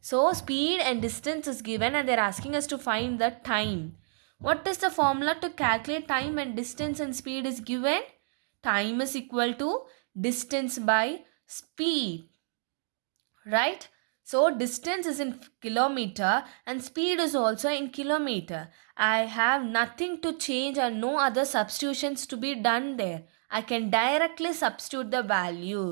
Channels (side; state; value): left; silent; digital silence